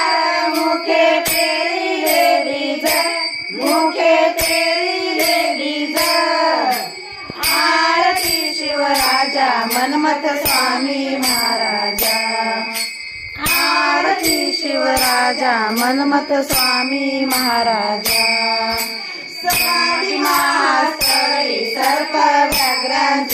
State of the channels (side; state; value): both; identical; correlation 1.00